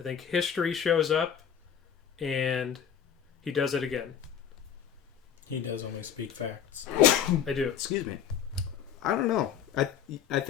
think history shows up, and he does it again. He does only speak facts. I do. Excuse me. I don't know. I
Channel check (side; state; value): right; quieter; 8.5 dB